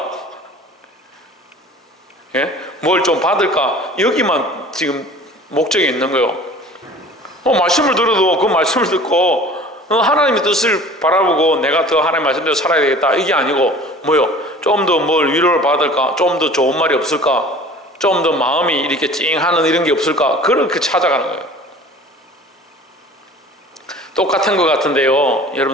예? 뭘 좀 받을까? 여기만 지금 목적이 있는 거예요. 말씀을 들어도 그 말씀을 듣고 하나님의 뜻을 바라보고 내가 더 하나님의 말씀대로 살아야 되겠다 이게 아니고 뭐요? 좀 더 뭘 위로를 받을까? 좀 더 좋은 말이 없을까? 좀 더 마음이 이렇게 찡하는 이런 게 없을까? 그렇게 찾아가는 거예요. 똑같은 것 같은데요,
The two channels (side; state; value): both; normal; correlation 0.45